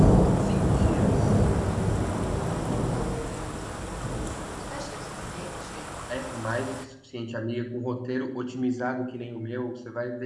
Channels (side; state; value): both; identical; correlation 1.00